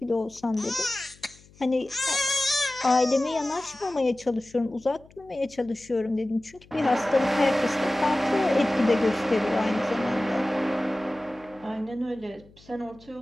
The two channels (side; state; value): left; noise; hum, 26 dB below the sound